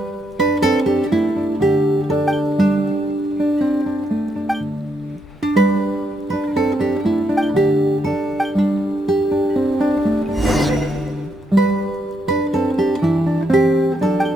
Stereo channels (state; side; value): normal; both; correlation 0.78